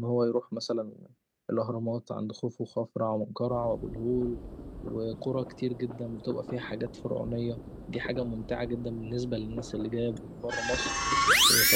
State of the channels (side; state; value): both; identical; correlation 1.00